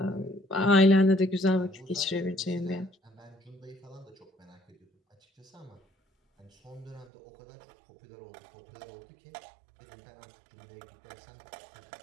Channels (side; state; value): left; drops out; at 7.1 s